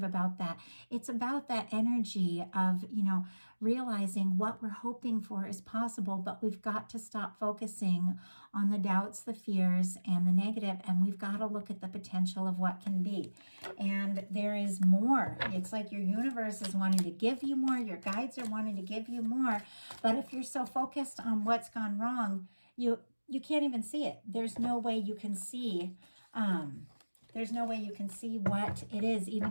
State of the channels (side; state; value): both; inverted; correlation -1.00